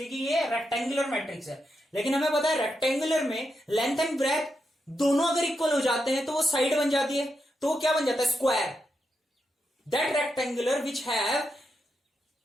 कि ये रेक्टेंगुलर मैट्रिक्स है, लेकिन हमें पता है रेक्टेंगुलर में लेंथ एंड ब्रेथ दोनों अगर इक्वल हो जाते हैं तो वो साइड बन जाती है, तो वो क्या बन जाता है, square. That rectangular which have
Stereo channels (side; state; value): both; normal; correlation 0.85